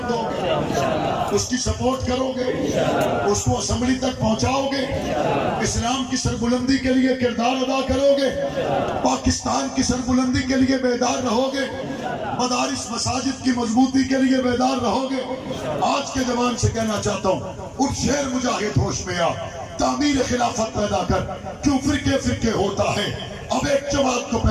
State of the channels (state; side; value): identical; both; correlation 1.00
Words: دو گے؟ اس کی سپورٹ کرو گے؟ اس کو اسمبلی تک پہنچاؤ گے؟ اسلام کی سربلندی کے لیے کردار ادا کرو گے؟ پاکستان کی سربلندی کے لیے بیدار رہو گے؟ مدارس مساجد کی مضبوطی کے لیے بیدار رہو گے؟ آج کے جوان سے کہنا چاہتا ہوں، اٹھ شیر مجاہد ہوش میں آ، تعمیر خلافت پیدا کر، کیوں فرقے ہوتا ہے، اب ایک جماعت کو